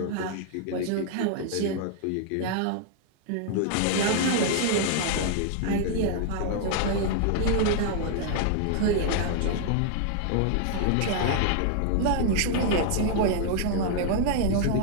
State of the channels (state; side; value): different; both; correlation -0.01